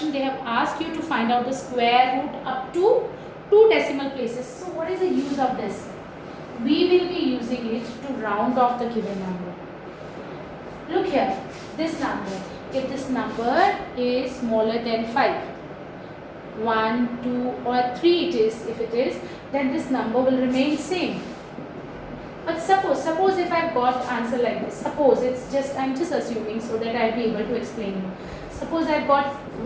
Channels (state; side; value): identical; both; correlation 1.00